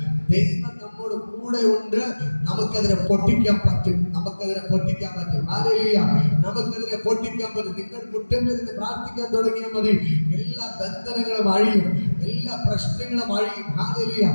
ദൈവം നമ്മോട് കൂടെ ഉണ്ട്. നമുക്കതിനെ പൊട്ടിക്കാൻ പറ്റും. ഹല്ലേലൂയ. നമുക്കതിനെ പൊട്ടിക്കാൻ പറ്റും. നിങ്ങൾ മുറ്റമേന്ന് പ്രാർത്ഥിക്കാൻ തുടങ്ങിയാൽ മതി. എല്ലാ ബന്ധനങ്ങളും അഴിയും, എല്ലാ പ്രശ്നങ്ങളും അഴിയും. ഹല്ലേലൂയ.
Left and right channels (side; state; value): both; inverted; correlation -1.00